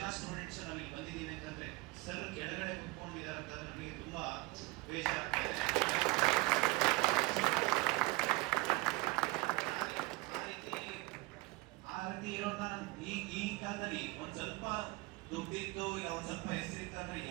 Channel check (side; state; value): left; quieter; 23.6 dB